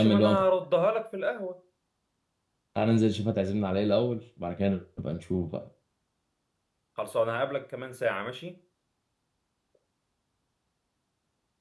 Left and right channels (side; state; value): both; identical; correlation 1.00